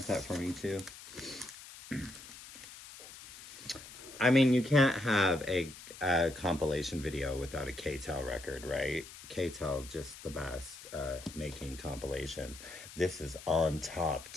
that for me too. I mean, you can't have a compilation video without a KTEL record, right? KTEL, just the best making compilations. This is on top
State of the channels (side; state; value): left; noise; hiss, 16 dB below the sound